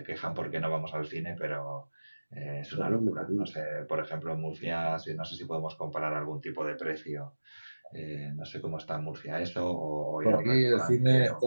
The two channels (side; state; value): both; inverted; correlation -1.00